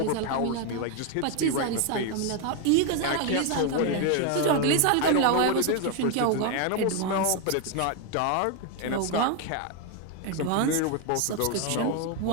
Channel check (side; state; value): both; different; correlation 0.01